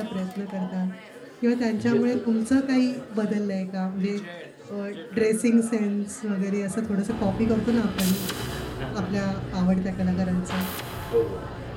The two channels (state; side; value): identical; both; correlation 1.00